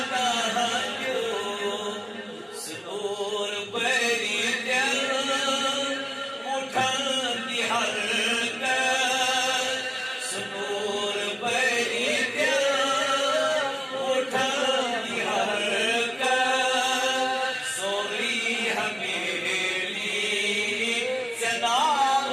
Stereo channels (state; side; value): identical; both; correlation 1.00